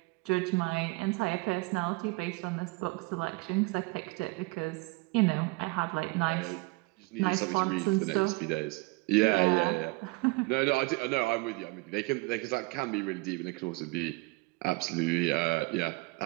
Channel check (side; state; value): left; quieter; 25.5 dB